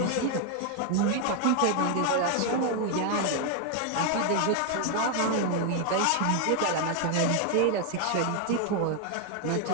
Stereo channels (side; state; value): both; different; correlation 0.00